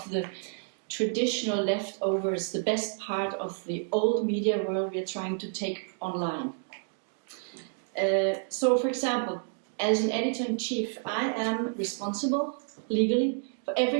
the traditional leftovers, the best part of the old media world we are trying to take online. So, for example, as an editor-in-chief, I am responsible legally for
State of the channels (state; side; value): silent; left; 58 dB below the other